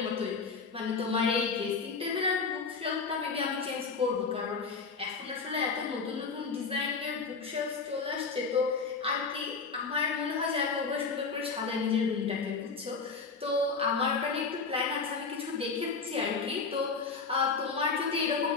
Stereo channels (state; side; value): quieter; right; 4.8 dB